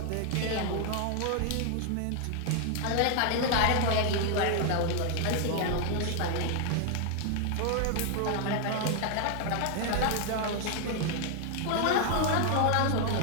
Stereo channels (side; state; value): both; different; correlation 0.00